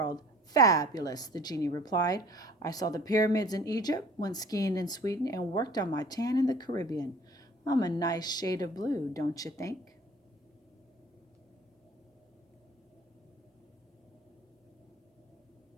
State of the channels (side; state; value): both; normal; correlation 0.49